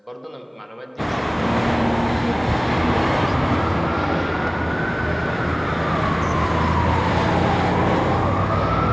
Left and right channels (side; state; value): both; identical; correlation 1.00